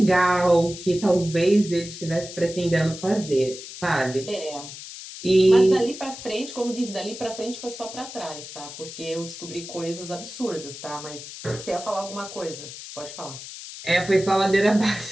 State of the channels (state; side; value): noise; left; hiss, 12 dB below the sound